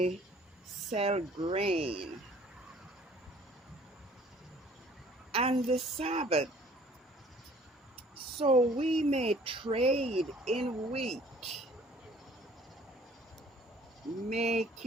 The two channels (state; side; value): normal; both; correlation 0.55